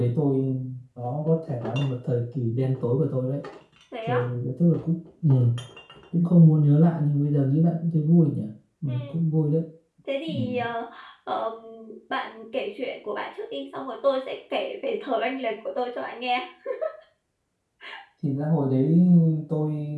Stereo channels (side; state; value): both; identical; correlation 1.00